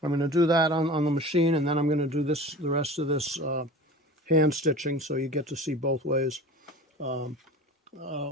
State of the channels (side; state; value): both; normal; correlation 0.38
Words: going to do that on the machine, and then I'm going to do the rest of this hand stitching, so you get to see both ways.